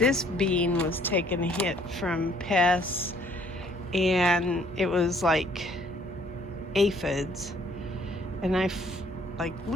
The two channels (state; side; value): normal; both; correlation 0.61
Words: bean was taking a hit from pests, and it was like aphids. And like,